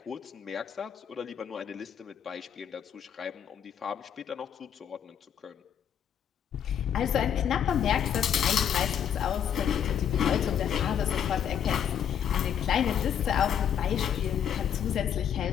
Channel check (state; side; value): quieter; right; 8.7 dB